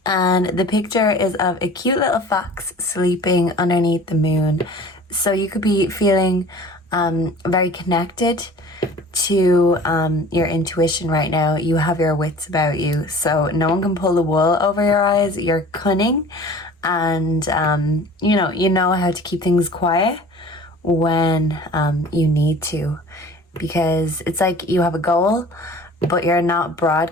And the picture is of a cute little fox sleeping underneath the moon. So you could be feeling very connected to your intuition right now. You have your wits about you, so no one can pull the wool over your eyes. You're cunning, and you know how to keep things quiet when you need to, because it's like you have a goal, but you're not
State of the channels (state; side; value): normal; both; correlation 0.44